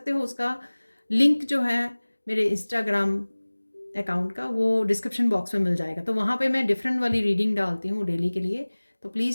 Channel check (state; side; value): inverted; both; correlation -1.00